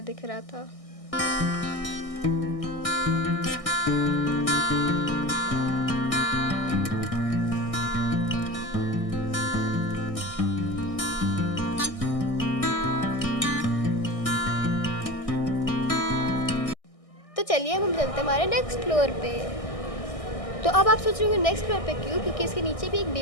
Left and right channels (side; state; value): right; late; 1.6 ms